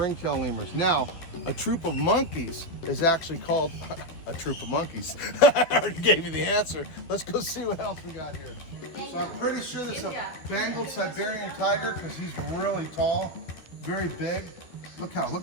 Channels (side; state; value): right; late; 12 ms